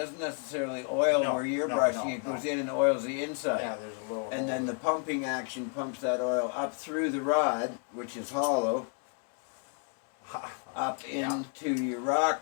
necessarily oil No, where you're no, brushing. no, It goes no. in and oils the inside. Yeah, there's a little. And then hole the pumping action pumps that oil up through the rod, which is hollow, there. up Yeah. into your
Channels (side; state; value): right; quieter; 39.8 dB